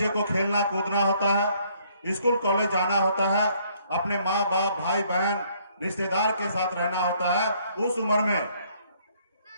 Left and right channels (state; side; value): inverted; both; correlation -0.65